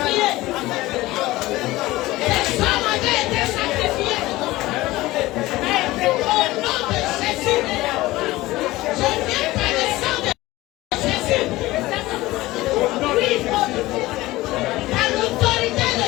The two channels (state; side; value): quieter; right; 18.4 dB